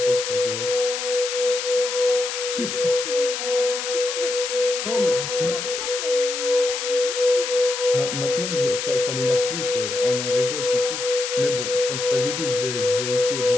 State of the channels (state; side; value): noise; left; hiss, 4 dB below the sound